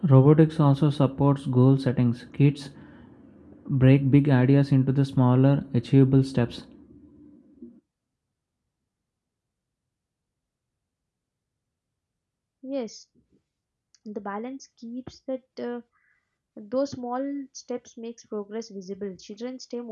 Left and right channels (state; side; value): identical; both; correlation 1.00